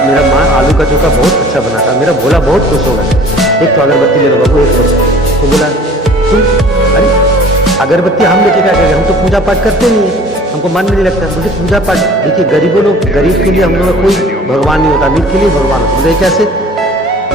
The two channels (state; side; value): normal; both; correlation 0.48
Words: मेरा माँ आलू का चोखा बहुत अच्छा बनाता है, मेरा भोला बहुत खुश होगा, एक तो अगरबत्ती ले लो बाबू, एक लो। तो बोला तुम, अरे अगरबत्ती हम लेके क्या करेंगे, हम तो पूजा पाठ करते नहीं है, हमको मन में नहीं लगता। मुझे पूजा पाठ, देखिए गरीबों लोग, गरीब के लिए हम लोग का कोई भगवान नहीं होता, अमीर के लिए भगवान होता। बोले कैसे,